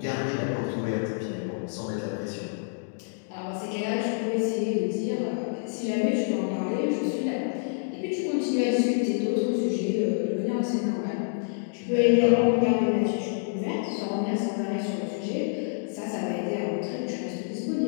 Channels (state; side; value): silent; right; digital silence